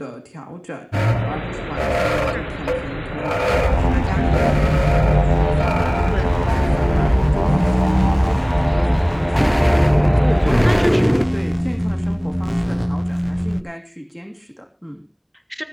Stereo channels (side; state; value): both; identical; correlation 1.00